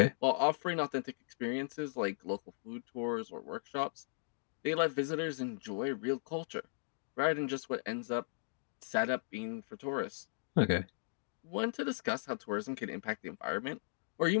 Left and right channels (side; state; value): right; silent; digital silence